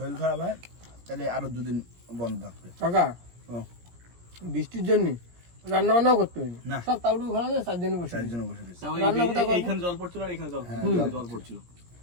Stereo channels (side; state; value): left; late; 17 ms